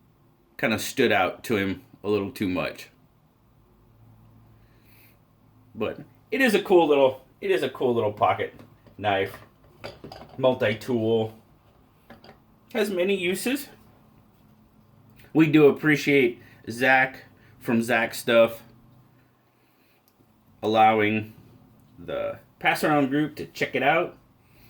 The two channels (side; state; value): both; identical; correlation 1.00